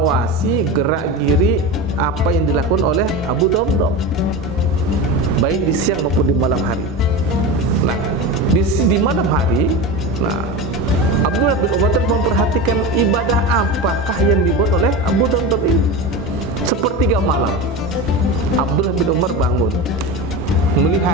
gerak-geri apa yang dilakukan oleh Abu Damdam, baik di siang maupun di malam hari. Nah, di malam hari, nah, Abdullah bin Umar terus memperhatikan ibadah apakah yang dibuat oleh Abu Damdam ini. Sepertiga malam Abdullah bin Umar bangun,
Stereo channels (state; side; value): normal; both; correlation 0.25